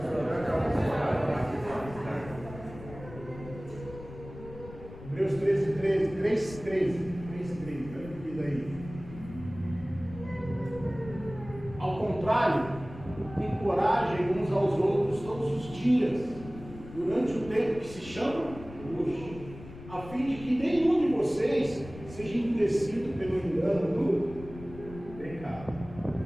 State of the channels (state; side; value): noise; left; rumble, 15 dB below the sound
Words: agradável. Hebreus 13, 13, 3, 13. 3, 13. Olha o que diz aí. Ao contrário, encorajem uns aos outros todos os dias, durante o tempo que se chama hoje, a fim de que nenhum de vocês seja endurecido pelo engano do pecado.